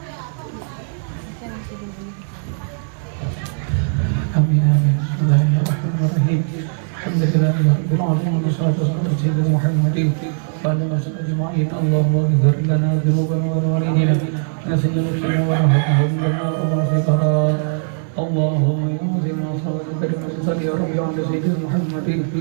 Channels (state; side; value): silent; left; digital silence